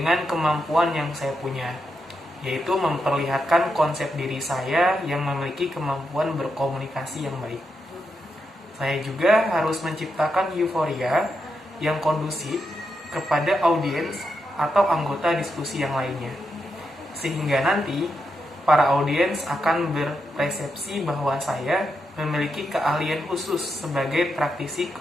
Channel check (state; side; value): normal; both; correlation 0.84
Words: kemampuan yang saya punya, yaitu memperlihatkan konsep diri saya yang memiliki kemampuan berkomunikasi yang baik. Saya juga harus menciptakan euforia yang kondusif kepada audiens atau anggota diskusi yang lainnya, sehingga nanti para audiens akan berpersepsi bahwa saya memiliki keahlian khusus sebagai praktisi